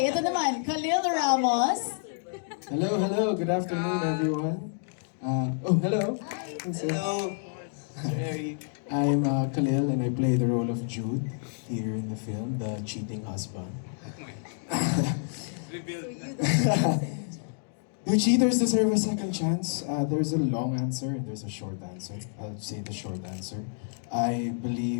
ito naman, Khalil Ramos. Hello. Good afternoon, everyone. Hello. Hello. Jerry. I'm Khalil, and I play the role of Jude here in the film, the cheating husband. Do cheaters deserve a second chance? There's a long answer and there's a short answer. I'll say the short answer. I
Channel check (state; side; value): silent; right; digital silence